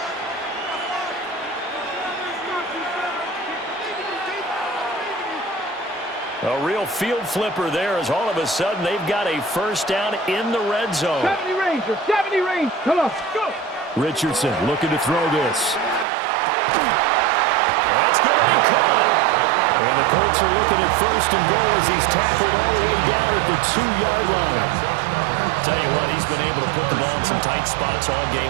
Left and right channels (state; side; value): drops out; left; at 16.1 s